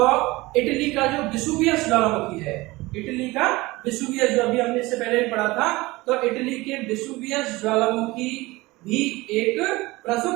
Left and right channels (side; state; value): left; quieter; 21.0 dB